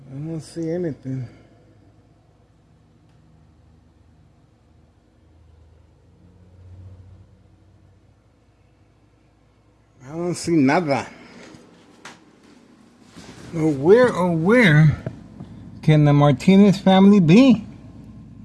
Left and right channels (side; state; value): both; identical; correlation 1.00